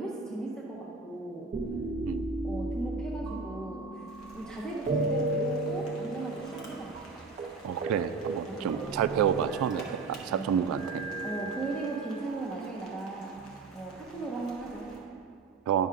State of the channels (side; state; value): left; quieter; 4.4 dB